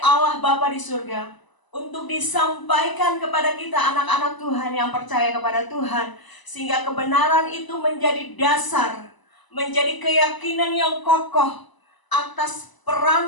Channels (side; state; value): right; late; 1.0 ms